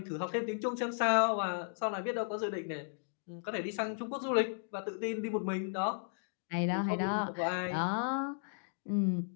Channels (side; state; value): right; silent; digital silence